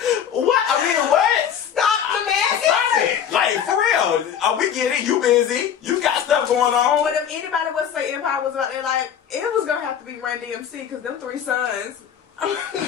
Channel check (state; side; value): quieter; right; 8.6 dB